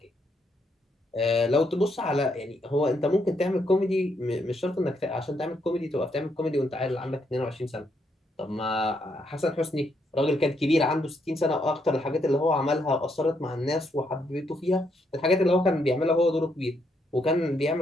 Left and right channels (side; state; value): both; normal; correlation 0.76